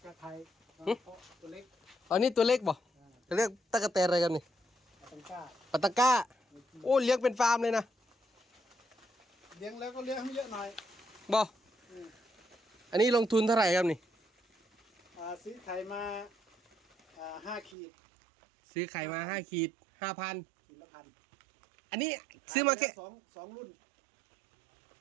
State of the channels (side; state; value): left; drops out; at 17.8 s